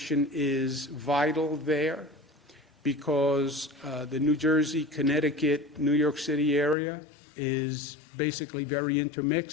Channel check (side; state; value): right; drops out; at 6.8 s